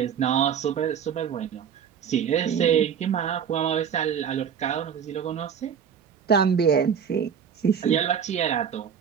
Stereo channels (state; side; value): quieter; left; 7.8 dB